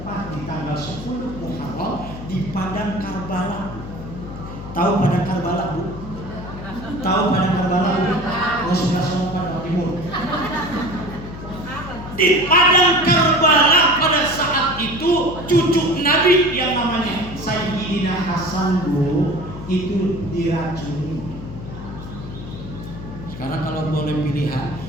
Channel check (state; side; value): noise; left; hum, 11 dB below the sound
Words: di tanggal 10 Muharram di padang Karbala. Tahu padang Karbala, Bu? Tahu padang Karbala, Bu? Rasulullah SAW Timur. Di padang Karbala pada saat itu cucu Nabi yang namanya Sayyidina Hasan, Bu, itu diracuni. Sekarang kalau boleh pilihan,